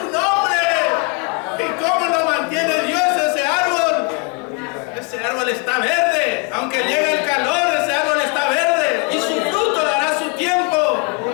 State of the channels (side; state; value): right; quieter; 33.0 dB